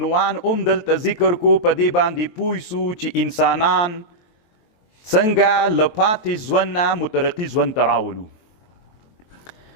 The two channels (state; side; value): late; right; 23 ms